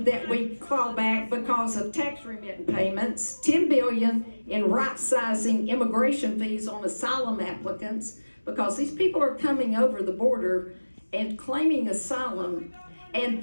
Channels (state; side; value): inverted; both; correlation -1.00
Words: that we claw back because of tax remittance payments, $10 billion in right-sizing immigration fees on asylum applicants, because these people are coming over the border and claiming asylum, and